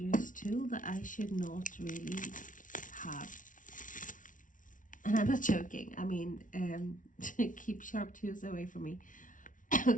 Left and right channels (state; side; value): late; right; 0.38 ms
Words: tool that I should not really have. And I'm not joking, I mean, keep sharp tools away from me.